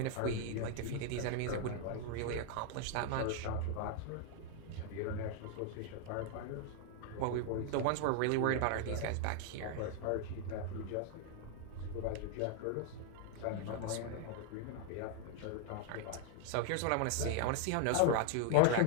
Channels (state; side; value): different; both; correlation 0.00